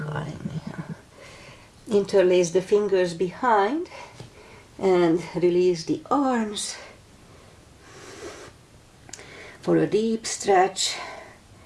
me? Interlace the fingers behind and release the arms for a deep stretch,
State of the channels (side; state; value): both; identical; correlation 1.00